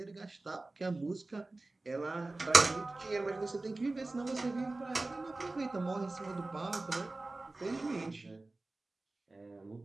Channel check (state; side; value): quieter; left; 3.1 dB